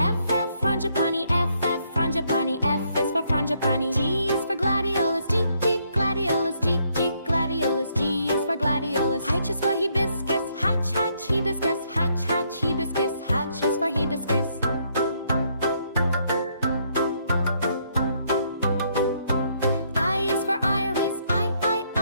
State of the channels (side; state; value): both; inverted; correlation -0.72